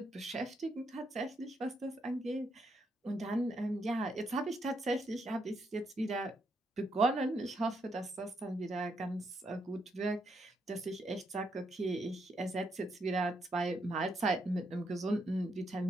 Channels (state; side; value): normal; both; correlation 0.78